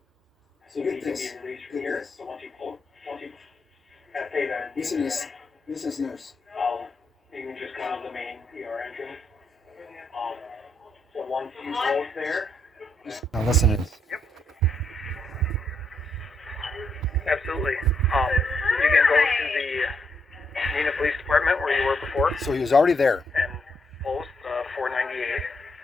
So You get can this. be released from Get here. this. So once you have paid that, Listen to this. Listen to this nurse. you can just come to the main ER entrance. So once you post there. Now listen to this. Absolutely. You can go to the Neenah Police Department where you were before So he was already there. and post 498.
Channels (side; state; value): both; normal; correlation 0.77